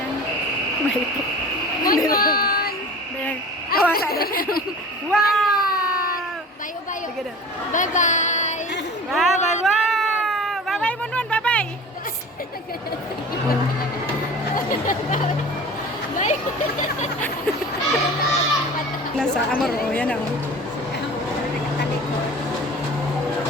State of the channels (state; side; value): normal; both; correlation 0.39